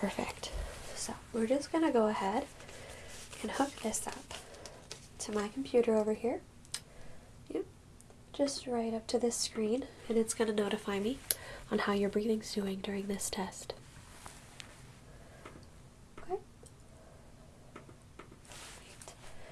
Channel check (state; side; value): identical; both; correlation 1.00